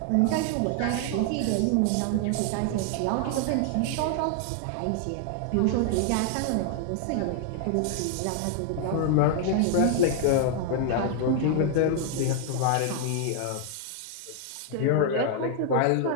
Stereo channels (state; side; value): different; both; correlation 0.00